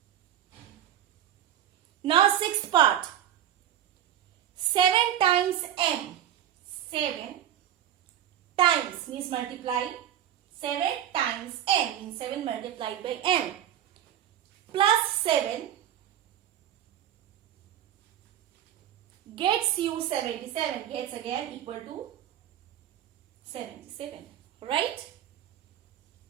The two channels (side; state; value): left; quieter; 10.9 dB